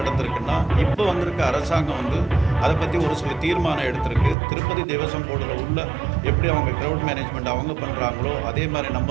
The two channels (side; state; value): left; drops out; at 4.4 s